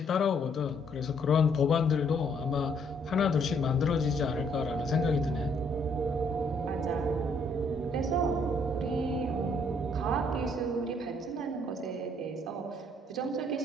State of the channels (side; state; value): both; normal; correlation 0.67